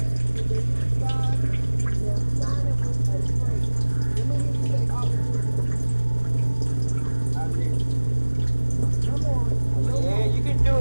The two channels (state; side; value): inverted; both; correlation -1.00